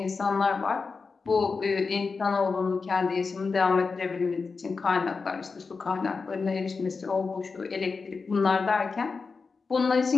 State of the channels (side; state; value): right; quieter; 4.6 dB